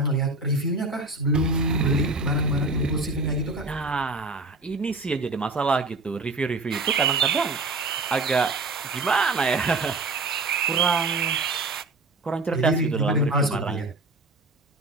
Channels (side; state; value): left; quieter; 3.1 dB